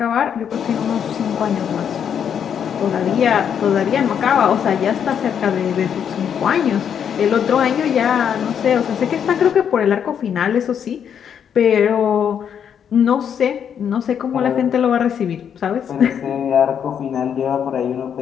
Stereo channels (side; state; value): right; quieter; 8.2 dB